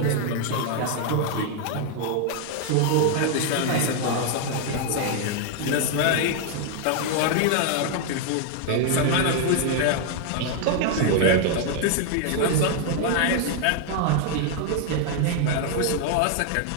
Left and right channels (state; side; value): different; both; correlation 0.00